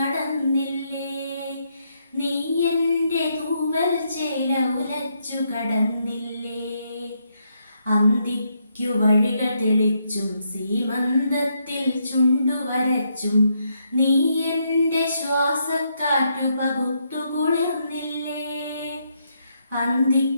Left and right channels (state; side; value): inverted; both; correlation -0.77